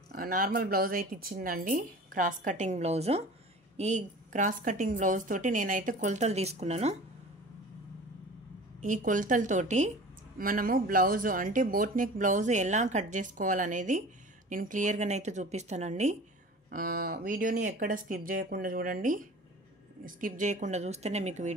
నార్మల్ బ్లౌజ్ అయితే ఇచ్చిందండి, క్రాస్ కటింగ్ బ్లౌజు. ఈ క్రాస్ కటింగ్ బ్లౌజ్ తోటి నేనైతే కొలతలు తీసుకున్నాను. ఈ కొలతలతోటి మనము బ్లౌజు అంటే బోట్ నెక్ బ్లౌజు ఎలా కట్ చేసుకోవాలనేది నేను క్లియర్గానైతే చూపిస్తానండి. వీడియోని ఎక్కడ స్కిప్ చేయకుండా చూడండి. స్కిప్ చేయకుండా చూస్తేనే మీకు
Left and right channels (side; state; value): both; normal; correlation 0.40